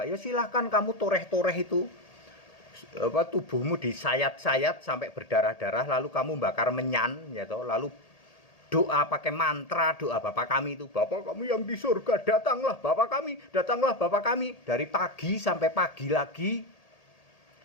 Ya silahkan kamu toreh-toreh itu. Tubuhmu disayat-sayat sampai berdarah-darah, lalu kamu bakar menyan, ya toh, lalu doa pakai mantra, doa Bapa kami itu, Bapa kami yang di surga, datanglah Bapa kami, datanglah Bapa kami, dari pagi sampai pagi lagi,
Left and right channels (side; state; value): right; late; 1.8 ms